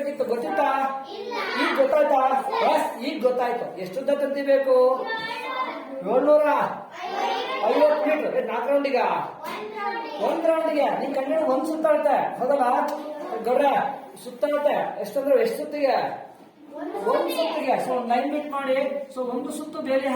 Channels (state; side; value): identical; both; correlation 1.00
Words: ಗೊತ್ತಿತ್ತಾ? ಈಗ ಗೊತ್ತಾಯ್ತಾ? ಈಗ ಗೊತ್ತಾಯ್ತು. ಎಷ್ಟುದ್ದ ತಂತಿ ಬೇಕು? 750 ಮೀಟರ್. 4 ರೌಂಡಿಗ 1 ರೌಂಡಿಗೆ ನೀನ್ ಕಂಡು 1 ಸುತ್ತಾಡುತ್ತೆ. ಹೌದಲ್ಲ ಗೌಡ್ರ? ಸುತ್ತಾಡುತ್ತೆ ಎಷ್ಟಂದ್ರೆ ಎಷ್ಟು ಸುತ್ತಿಗೆ? 1 ಸುತ್ತಿಗೆ. ಸೊ 9 ಮೀಟ್ ಮಾಡಿ. ಸೊ 1 ಸುತ್ತು ಬೇಲಿ